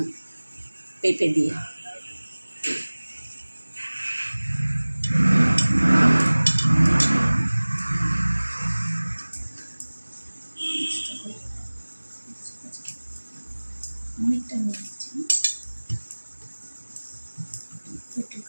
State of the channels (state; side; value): inverted; both; correlation -1.00